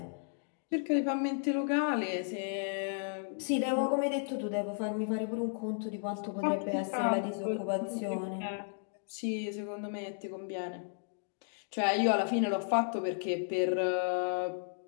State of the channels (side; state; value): right; silent; digital silence